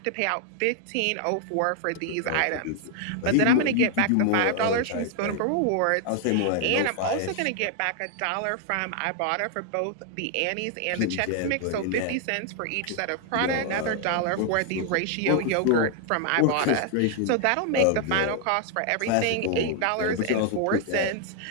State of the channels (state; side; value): different; both; correlation 0.00